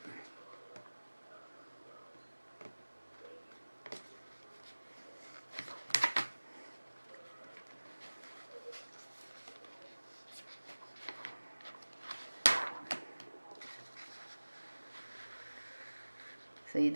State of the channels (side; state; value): both; inverted; correlation -1.00